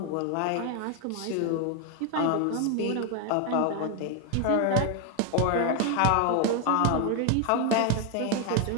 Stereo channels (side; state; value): both; different; correlation 0.01